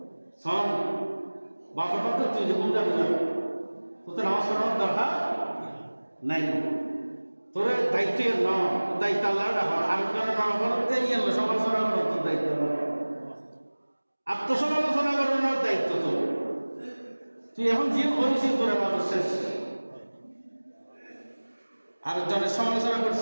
সব বাপের ভক্ত, তুই যে বুঝা বুঝা তোর তো নামাজ পড়ানোর দরকার নাই, তোর দায়িত্ব ন, তোর দায়িত্ব আল্লাহ রাখা, আরেকজনের নাম করতে ইয়ে সমালোচনা করার তোর দায়িত্ব, আত্মসমালোচনা করানোর দায়িত্ব তোর। তুই এখন যে করেছিস তোর এবাদত শেষ, আরেকজনের সমালোচনা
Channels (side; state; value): both; inverted; correlation -1.00